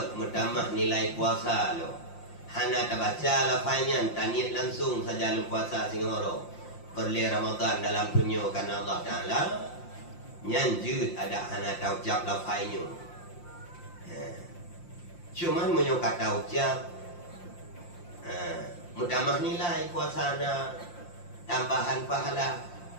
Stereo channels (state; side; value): late; right; 5.7 ms